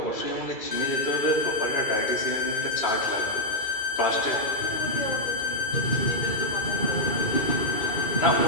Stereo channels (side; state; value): right; late; 2.3 ms